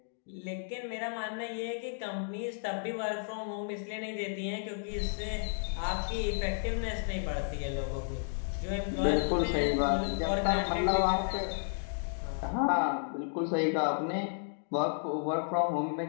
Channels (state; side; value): silent; right; digital silence